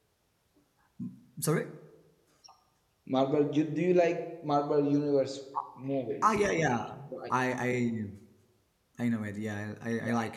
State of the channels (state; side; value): identical; both; correlation 1.00